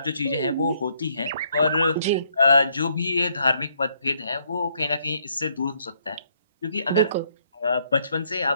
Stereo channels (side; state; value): both; inverted; correlation -0.70